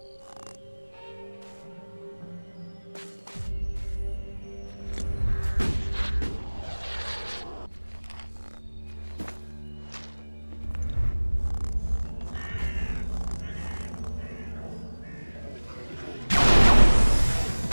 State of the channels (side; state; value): both; inverted; correlation -1.00